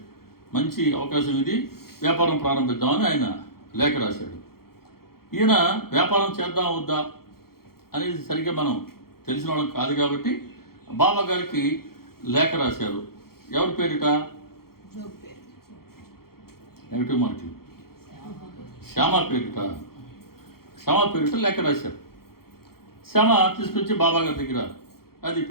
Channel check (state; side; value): late; right; 0.94 ms